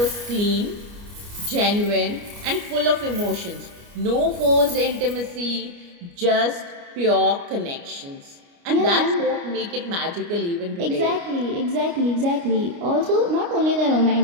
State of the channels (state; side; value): late; left; 29 ms